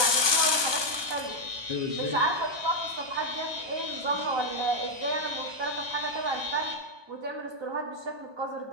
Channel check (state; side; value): late; left; 1.2 ms